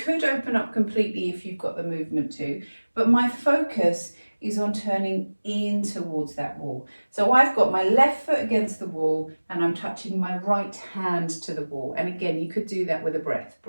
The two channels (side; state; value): both; inverted; correlation -1.00